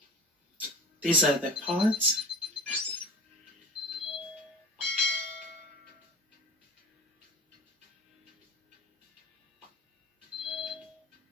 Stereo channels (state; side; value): normal; both; correlation 0.37